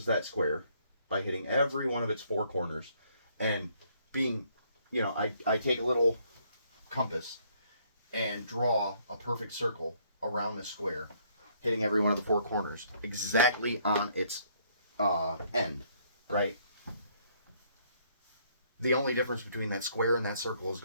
that square by hitting every one of its 4 corners and being, I take a little compass and draw a perfect circle around this square, hitting every one of the 4 corners exactly on its end, right? The only difference between that square and that circle is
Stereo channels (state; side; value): inverted; both; correlation -0.66